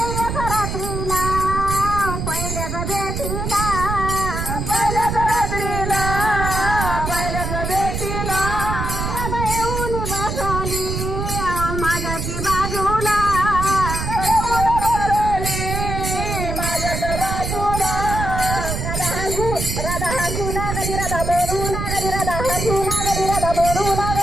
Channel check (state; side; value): noise; right; rumble, 3 dB below the sound